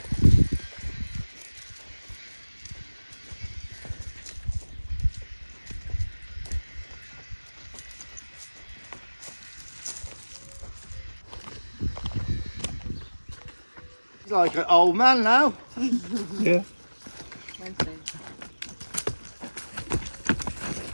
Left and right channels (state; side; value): inverted; both; correlation -1.00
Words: He's like an old man now. Yeah. Wednesday.